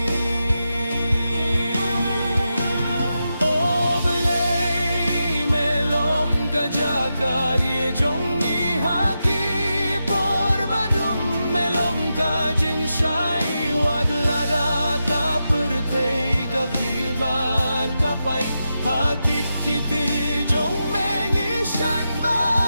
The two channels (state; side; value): inverted; both; correlation -0.88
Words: oblay melong kajagari jong Vivan kapai hakik kiti jong mengi shan